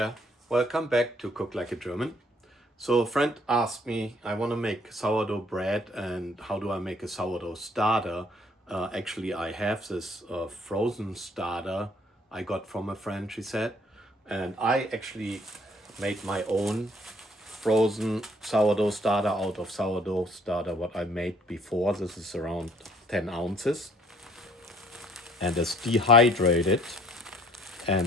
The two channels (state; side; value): normal; both; correlation 0.61